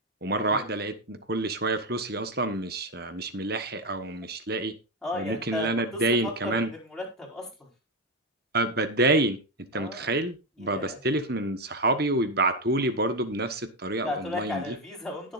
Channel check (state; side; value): normal; both; correlation 0.10